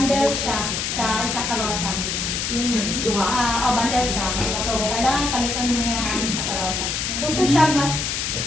siya sa karosa. Duha, bundle siya. So, kailangan palitan niya sa karosa. Gusto siya mas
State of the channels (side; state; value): left; noise; hiss, 1 dB below the sound